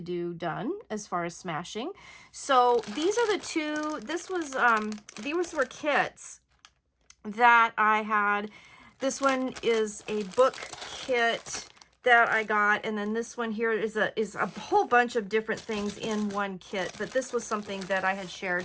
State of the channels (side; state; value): both; identical; correlation 1.00